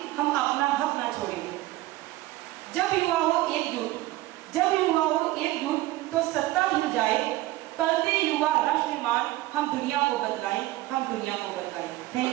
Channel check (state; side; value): quieter; left; 17.3 dB